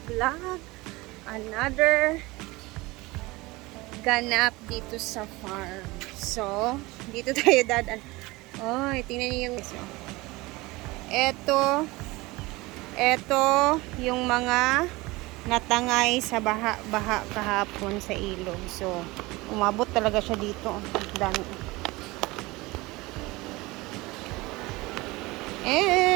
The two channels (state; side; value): quieter; left; 21.9 dB